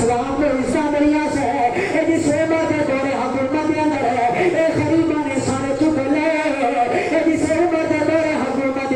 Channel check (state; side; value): identical; both; correlation 1.00